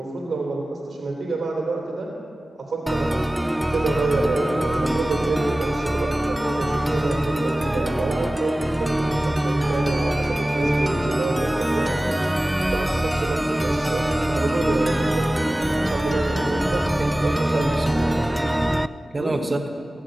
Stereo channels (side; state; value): both; normal; correlation 0.97